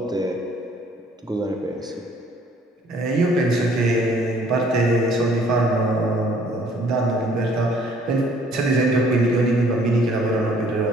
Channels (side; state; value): both; normal; correlation 0.60